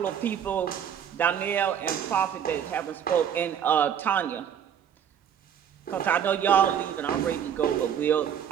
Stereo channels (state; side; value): quieter; left; 8.8 dB